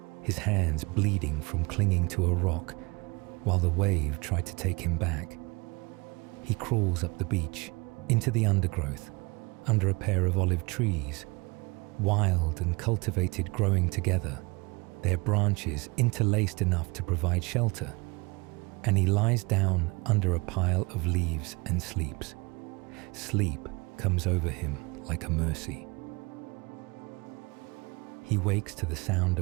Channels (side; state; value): left; quieter; 26.4 dB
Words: his hands bleeding from clinging to a rock while the wave tried to take him back. He crawls up the beach, into the undergrowth, under a pair of olive trees, wild and cultivated growing together, their branches interlaced enough to provide shelter, and he lies down under a pile of leaves and sleeps. Sleep comes over him like a mercy. He wakes to the sound